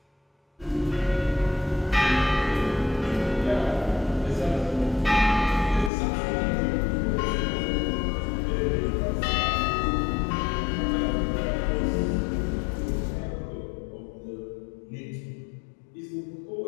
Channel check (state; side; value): drops out; right; at 5.9 s